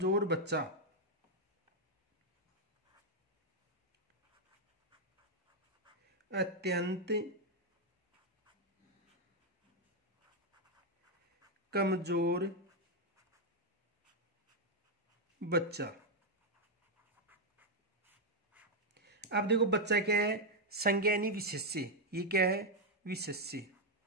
बच्चा, अत्यंत कमजोर बच्चा। अब देखो बच्चा क्या है, संज्ञा यानी विशेष्य, ये क्या है, विशेष्य।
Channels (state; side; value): normal; both; correlation 0.00